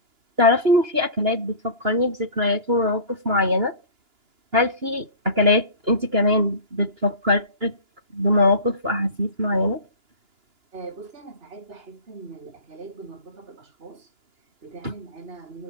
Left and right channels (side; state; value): left; late; 2.9 ms